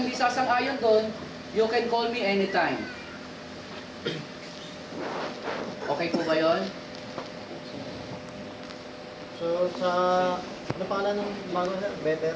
hindi sasang-ayon doon, you can call me anytime. Okay po ba yun? So, sa... Ano pangalan ng bago, sir? Better?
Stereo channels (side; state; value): both; identical; correlation 1.00